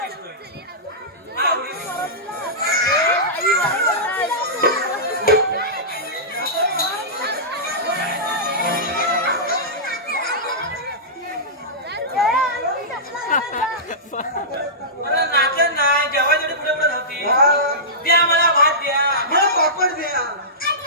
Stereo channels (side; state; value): both; normal; correlation -0.17